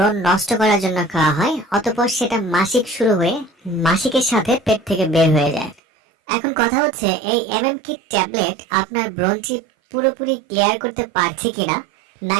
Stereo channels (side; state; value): left; drops out; at 5.8 s